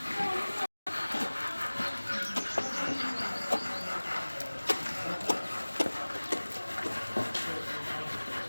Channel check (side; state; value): both; inverted; correlation -1.00